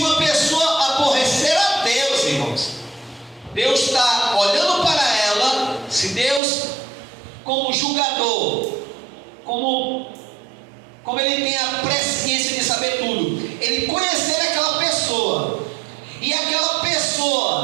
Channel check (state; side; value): drops out; left; at 6.4 s